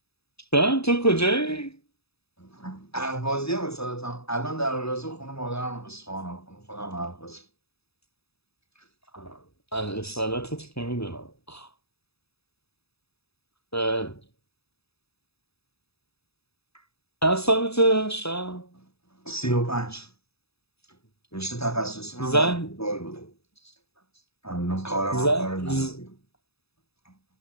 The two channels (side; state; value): right; late; 0.78 ms